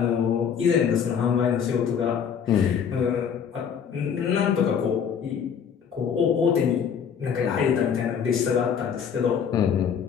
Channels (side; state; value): right; quieter; 7.4 dB